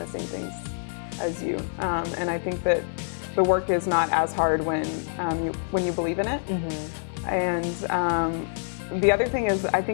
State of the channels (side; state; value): right; silent; 61 dB below the other